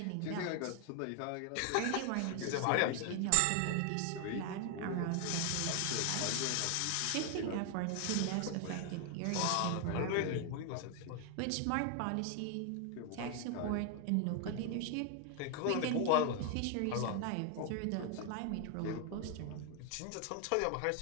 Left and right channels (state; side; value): different; both; correlation 0.00